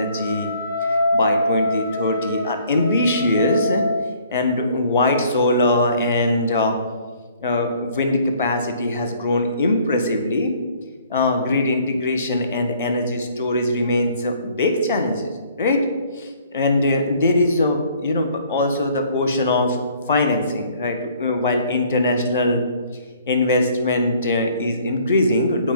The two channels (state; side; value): inverted; both; correlation -0.59